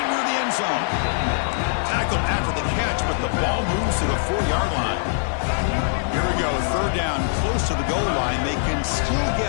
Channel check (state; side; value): silent; right; digital silence